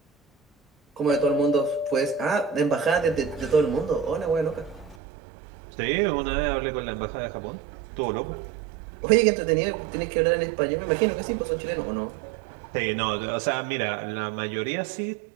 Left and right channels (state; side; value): drops out; left; at 5.0 s